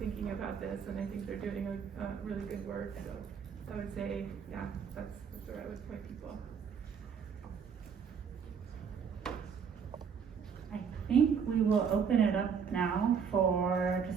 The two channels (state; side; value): quieter; left; 6.7 dB